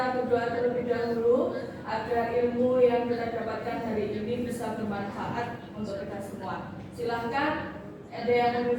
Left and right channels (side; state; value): both; identical; correlation 1.00